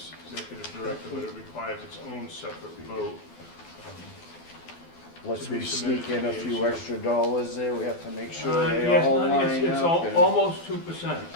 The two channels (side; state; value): right; late; 12 ms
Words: executive director, but it requires its own separate vote. Lest To be we submitted sneak in to a the few AG. extra dollars there, we have to make sure they Yes, all no, line it's up. and- almost 2%.